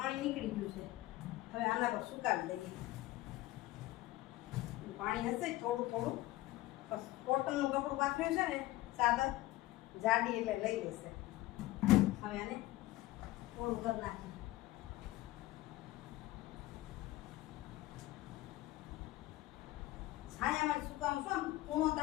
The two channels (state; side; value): quieter; right; 17.4 dB